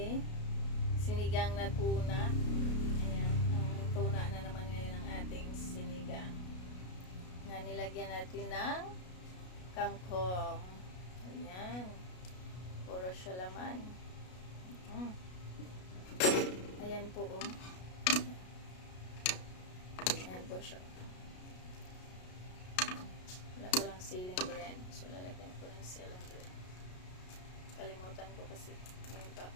sinigang na tuna. Ayan, ang tuna na naman ngayon ang ating sinigang. Nga nilagyan natin ng kangkong. Ayan. Puro siya laman. Ayan po oh. Ayan po siya. Wala pa lang ceiling brand. So, lalagyan ko ng ceiling brand. Kalimutan ko kasi. Ngayon pa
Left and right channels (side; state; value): right; late; 33 ms